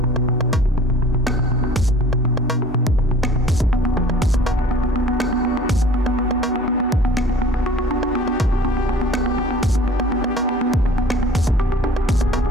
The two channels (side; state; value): both; normal; correlation 0.47